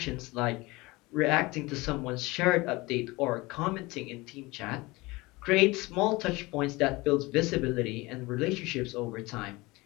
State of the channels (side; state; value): right; quieter; 22.5 dB